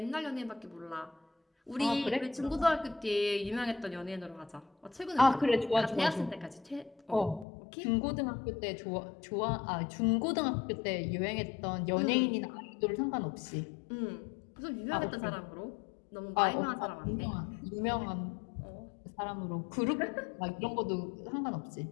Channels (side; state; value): right; drops out; at 7.5 s